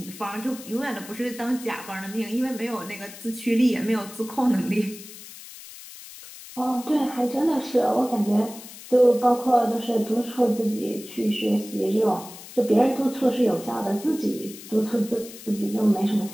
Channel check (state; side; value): noise; left; hiss, 16 dB below the sound